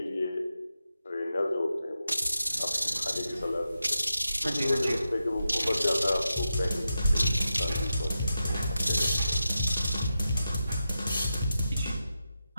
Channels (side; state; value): both; inverted; correlation -0.89